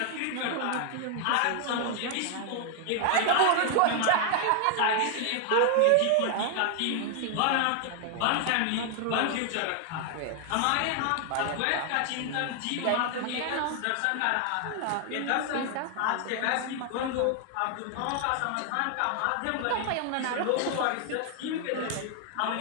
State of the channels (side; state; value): both; different; correlation 0.00